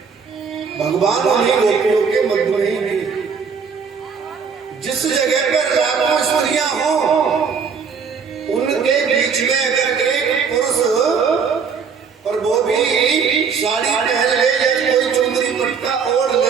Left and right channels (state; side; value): quieter; left; 6.0 dB